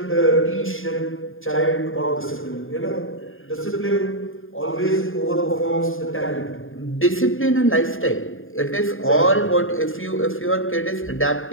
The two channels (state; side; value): late; right; 0.59 ms